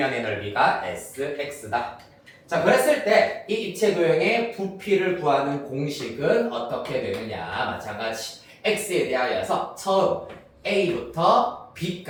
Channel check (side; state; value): both; identical; correlation 1.00